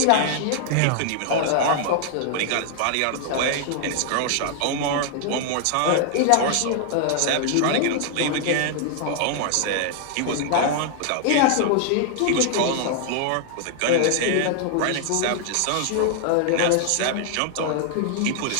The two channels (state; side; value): different; both; correlation 0.00